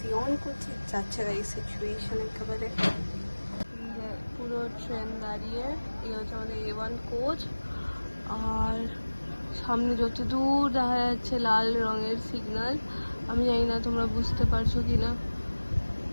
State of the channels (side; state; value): both; inverted; correlation -1.00